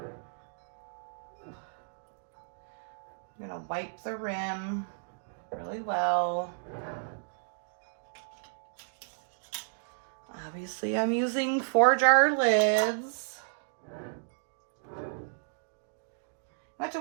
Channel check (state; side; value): silent; left; digital silence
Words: I'm gonna wipe the rim really well. Obviously, I'm using 4-jar lids. I have to